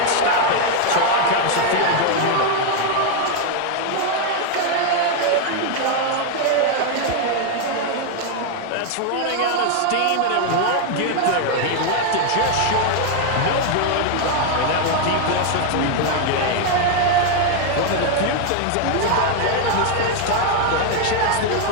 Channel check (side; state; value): both; different; correlation 0.01